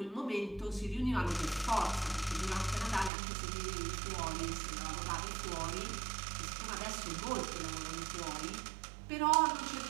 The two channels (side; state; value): left; drops out; at 3.1 s